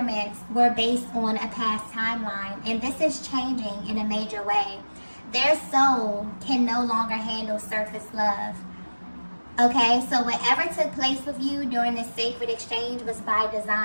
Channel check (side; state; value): both; inverted; correlation -1.00